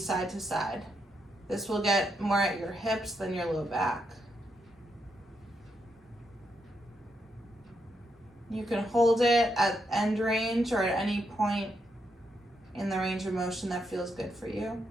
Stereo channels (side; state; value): both; normal; correlation 0.80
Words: side to side. This will get more at your hips than your low back. You can hold it at end range or at any point in the range of motion that feels good for you.